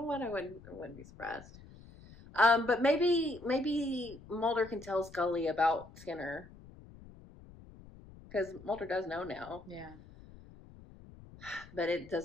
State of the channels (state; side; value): noise; left; rumble, 20 dB below the sound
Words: what? I wouldn't be surprised. But maybe Mulder can tell Scully about Skinner. Because Mulder does know now. Yeah. But it